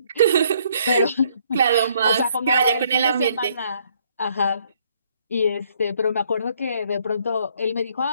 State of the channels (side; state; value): both; inverted; correlation -0.67